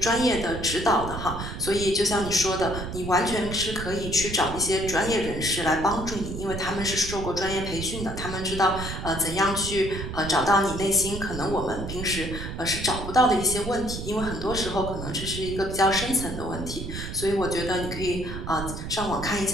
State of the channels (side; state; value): right; noise; rumble, 7 dB below the sound